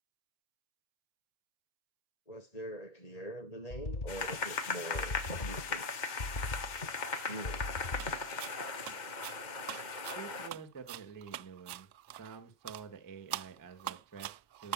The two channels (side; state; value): right; late; 2.1 ms